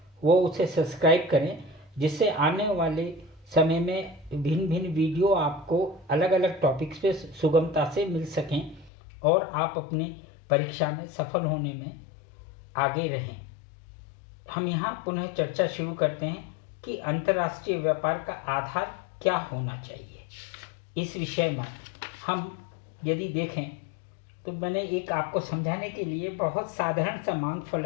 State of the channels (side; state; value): right; drops out; at 8.9 s